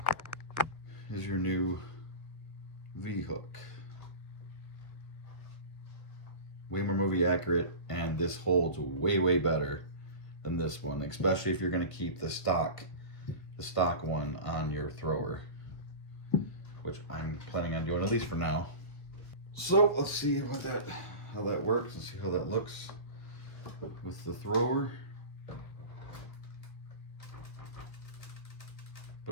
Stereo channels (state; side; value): late; right; 1.5 ms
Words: is your new V-hook. way more movie accurate, and this holds way, way better than this one, especially if you're going to keep the stock one on your thrower, which I'm planning on doing, at least for now. So let's see how that works and see how that looks with the thrower.